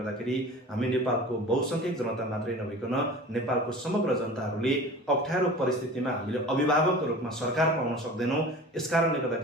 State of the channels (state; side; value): normal; both; correlation 0.38